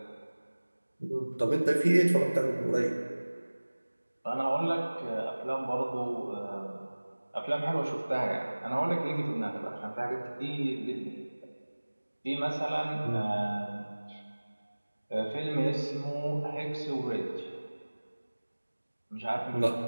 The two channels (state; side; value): inverted; both; correlation -1.00